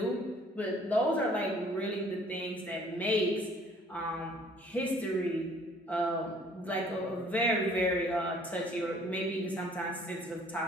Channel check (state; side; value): normal; both; correlation 0.57